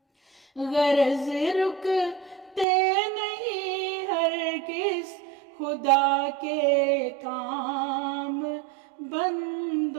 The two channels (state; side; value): drops out; left; at 2.7 s